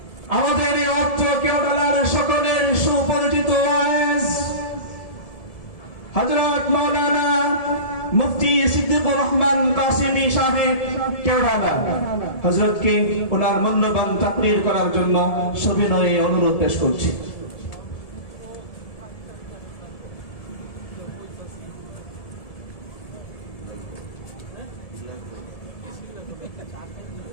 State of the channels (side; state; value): right; late; 1.7 ms